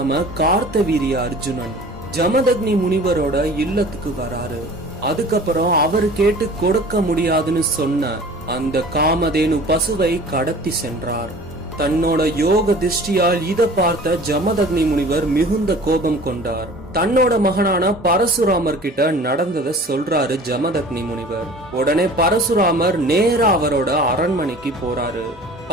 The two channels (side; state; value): both; normal; correlation 0.44